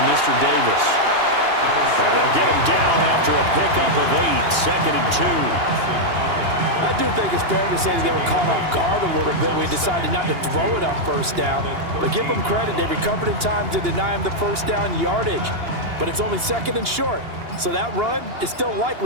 Mr. Davis. And they'll get him down after a pickup of 8, 2nd and 2. I do think it's fair to say that they were caught off guard a little bit. We decided not to throw it on 1st down. But give them credit. They recovered in time to deny him the 1st down yardage. But it's only 2nd and short. So that run is still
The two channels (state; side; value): late; left; 2.8 ms